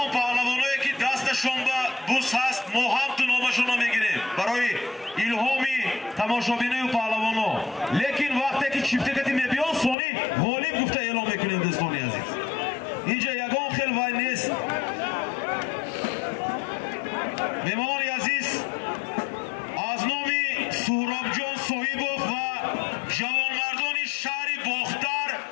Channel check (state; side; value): drops out; right; at 10.0 s